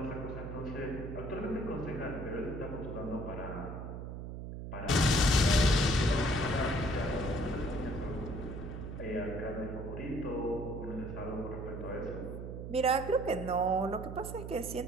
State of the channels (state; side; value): noise; right; hum, 7 dB below the sound